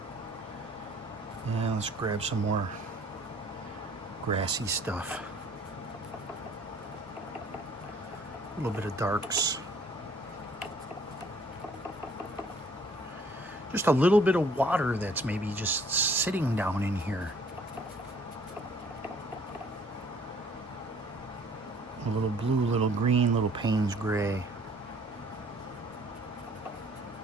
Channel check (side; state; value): both; normal; correlation 0.57